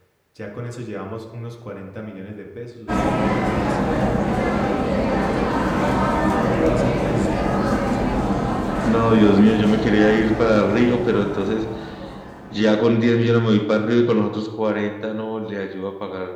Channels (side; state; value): both; identical; correlation 1.00